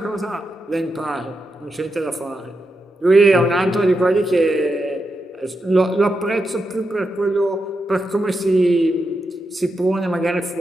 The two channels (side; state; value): both; normal; correlation 0.86